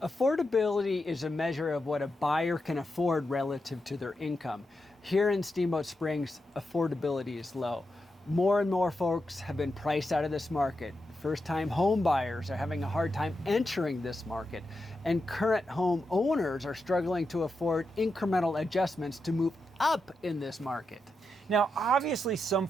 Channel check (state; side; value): normal; both; correlation 0.87